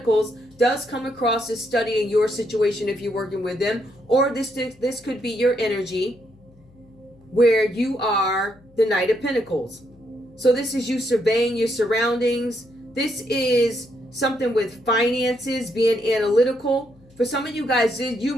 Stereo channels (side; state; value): left; noise; hum, 28 dB below the sound